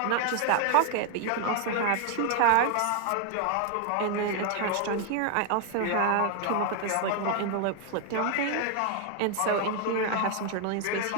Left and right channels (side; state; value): both; different; correlation 0.00